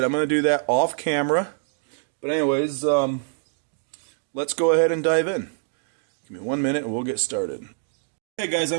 I'm going to do that off camera. But anyways, let's go ahead and dive in. Give me 1 minute and we'll get started. Hey guys,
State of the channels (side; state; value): left; silent; 62 dB below the other